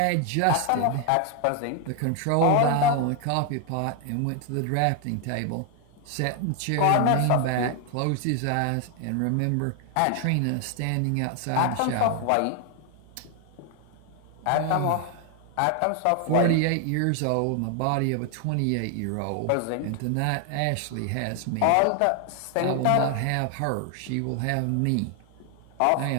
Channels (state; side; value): different; both; correlation 0.00